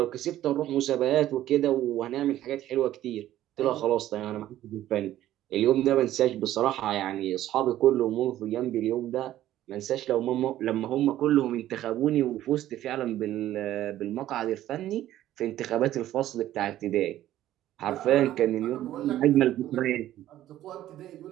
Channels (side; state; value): left; quieter; 13.4 dB